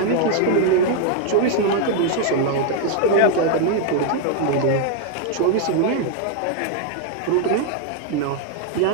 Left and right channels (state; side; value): different; both; correlation 0.00